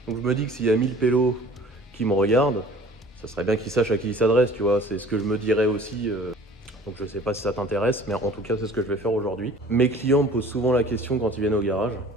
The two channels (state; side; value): normal; both; correlation 0.48